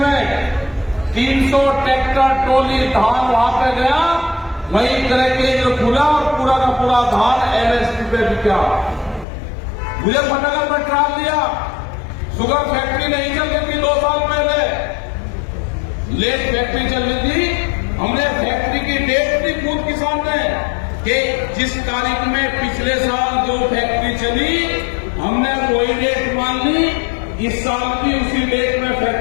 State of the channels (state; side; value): drops out; right; at 9.2 s